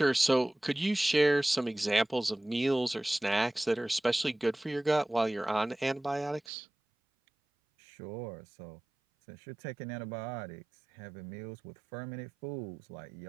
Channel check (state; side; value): drops out; left; at 6.4 s